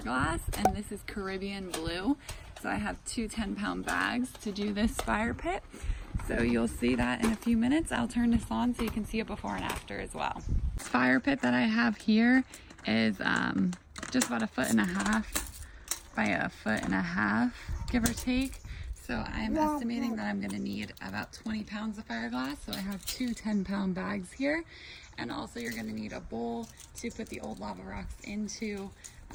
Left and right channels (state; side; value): identical; both; correlation 1.00